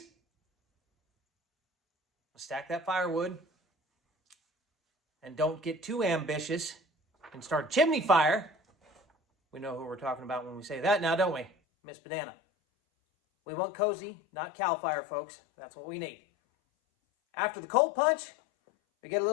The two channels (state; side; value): drops out; right; at 11.5 s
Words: Stack that firewood. And don't get too ambitious and start chimney fire. We know who we're talking about when we say that now, don't we, Miss Banana? We want cozy, not cow fire, folks. That's what we need. After the cold punch, we get a